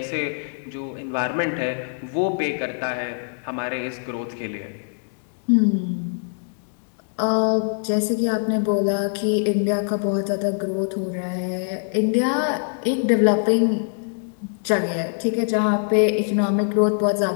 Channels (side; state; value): right; silent; 63 dB below the other